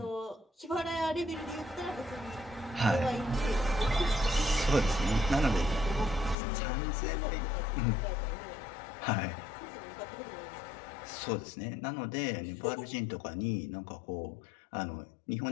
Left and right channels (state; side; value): drops out; right; at 6.4 s